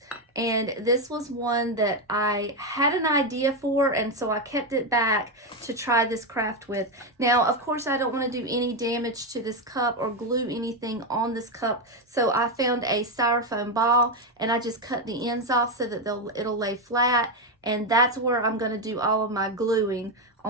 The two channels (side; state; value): both; normal; correlation 0.08